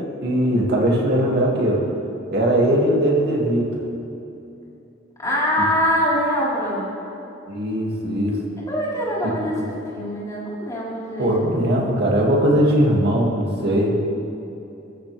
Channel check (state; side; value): normal; both; correlation 0.41